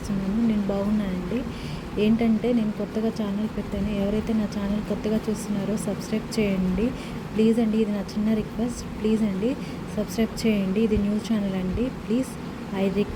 నేను బాగున్నానండి. ఏంటంటే నేను కొత్తగా ఛానల్ పెట్టాను. ఎవరైతే నా ఛానల్ కొత్తగా చూస్తున్నారో సబ్స్క్రైబ్ చేయండి ప్లీజ్ అండి. ఇది నా చిన్న రిక్వెస్ట్. ప్లీజ్ అండి సబ్స్క్రైబ్ చేయండి. ఇది న్యూస్ ఛానల్ అండి. ప్లీజ్ ఐ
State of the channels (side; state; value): both; identical; correlation 1.00